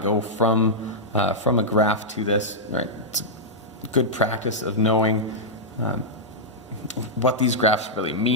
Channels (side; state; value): both; normal; correlation -0.09